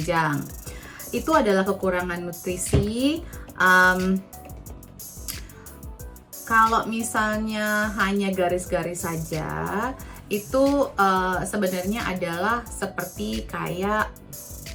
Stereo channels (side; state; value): both; identical; correlation 1.00